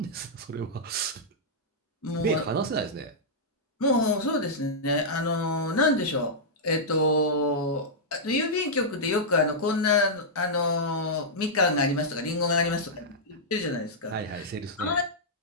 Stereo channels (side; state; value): both; normal; correlation -0.10